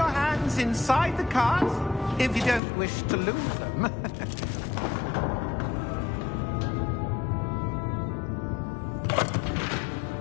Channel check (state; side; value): drops out; right; at 2.6 s